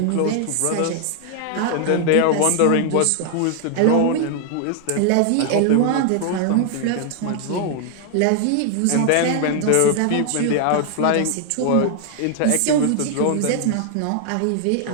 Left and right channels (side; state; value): both; different; correlation 0.00